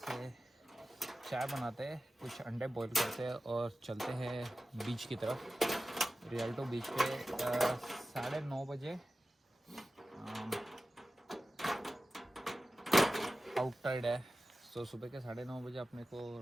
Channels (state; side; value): normal; both; correlation 0.95